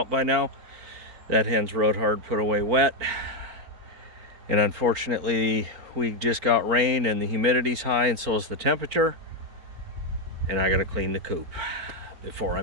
by now. That hen's rode hard, put away wet. And unfortunately, we just got rain and the humidity's high, and so is the temperature. And I gotta clean the coop before I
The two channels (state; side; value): late; left; 4.5 ms